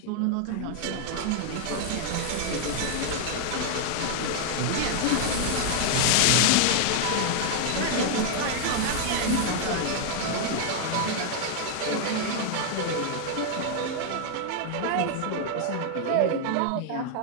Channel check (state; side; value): different; both; correlation 0.00